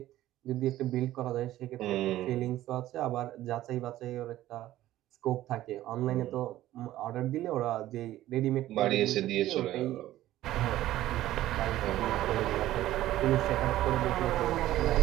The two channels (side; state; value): left; quieter; 14.5 dB